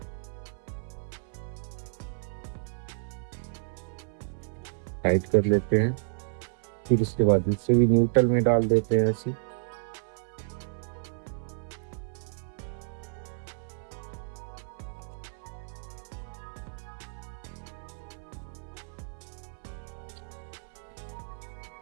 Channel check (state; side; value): silent; left; 57 dB below the other